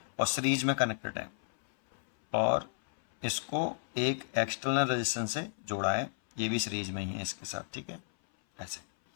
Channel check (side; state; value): right; silent; 56 dB below the other